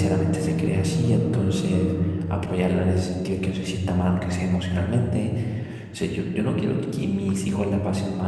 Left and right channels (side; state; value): both; identical; correlation 1.00